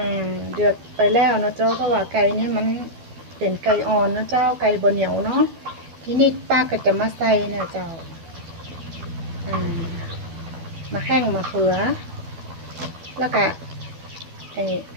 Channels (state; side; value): late; left; 12 ms